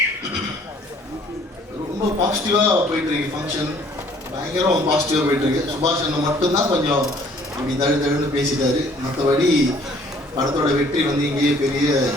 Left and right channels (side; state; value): both; normal; correlation 0.58